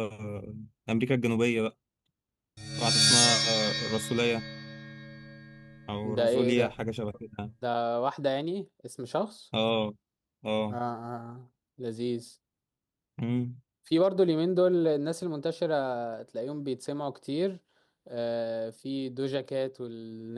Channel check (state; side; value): identical; both; correlation 1.00